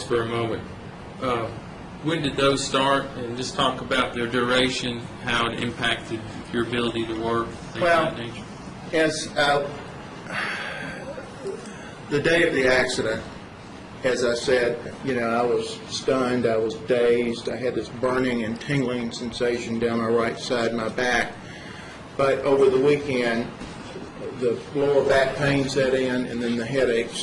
for a moment. When did those start? And just talk about their duration, how it impacted your ability to work, things Well, of that nature. As the day of the accident, as I said, I was stunned, I was dazed, I had this burning and tingling sensation down my right side of my back. But over the weekend, the lower back pain set in, and then the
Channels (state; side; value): identical; both; correlation 1.00